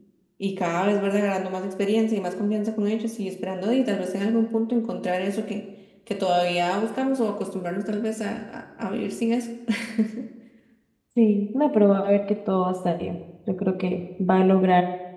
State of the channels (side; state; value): both; identical; correlation 1.00